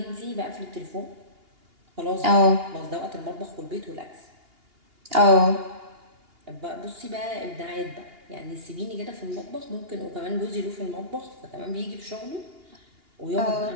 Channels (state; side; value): late; left; 2.8 ms